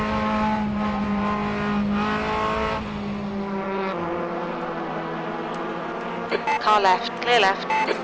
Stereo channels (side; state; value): both; identical; correlation 1.00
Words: Car left. Clear left.